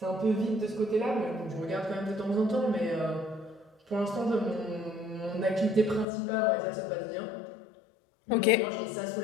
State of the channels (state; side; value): drops out; right; at 6.1 s